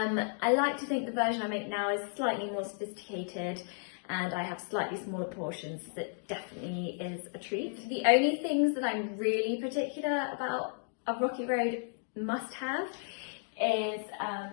like to think the version I make now is slightly more sophisticated, and I have slightly smaller portions. That definitely is a treat. The only things that I'm really particular about a Rocky Road must-have is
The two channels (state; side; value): silent; right; 55 dB below the other